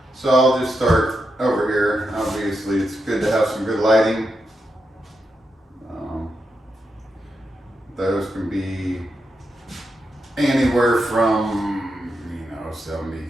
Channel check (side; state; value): both; normal; correlation 0.85